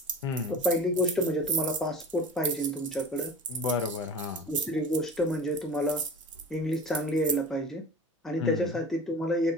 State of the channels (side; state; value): both; normal; correlation 0.38